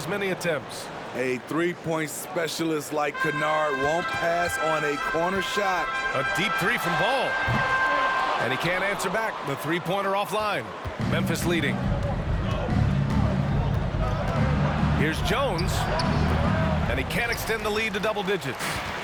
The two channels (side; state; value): both; identical; correlation 1.00